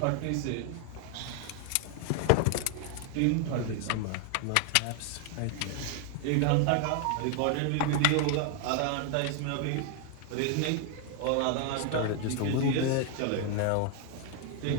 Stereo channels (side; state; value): both; different; correlation 0.00